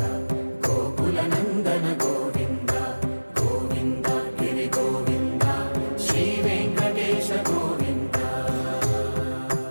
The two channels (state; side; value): inverted; both; correlation -1.00